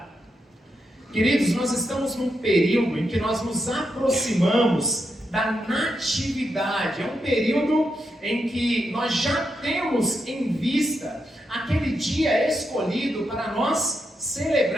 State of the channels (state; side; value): normal; both; correlation 0.84